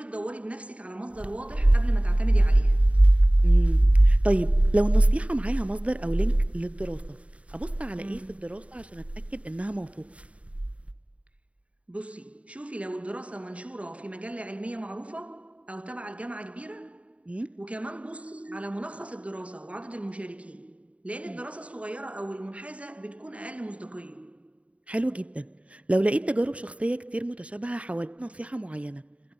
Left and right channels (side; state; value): left; late; 0.065 ms